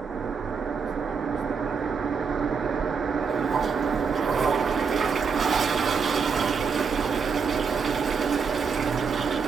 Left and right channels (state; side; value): quieter; left; 5.7 dB